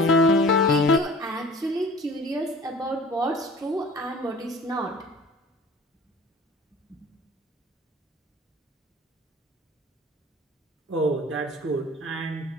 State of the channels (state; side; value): normal; both; correlation 0.44